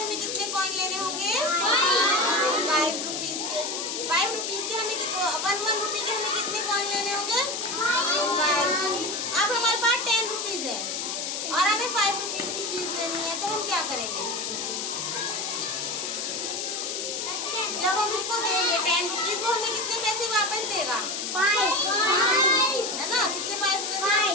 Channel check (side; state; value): left; noise; hiss, 3 dB below the sound